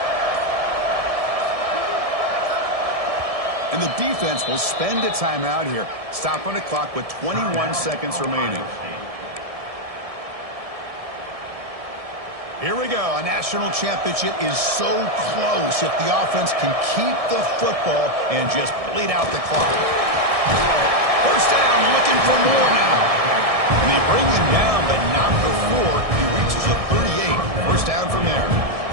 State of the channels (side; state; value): left; late; 1.7 ms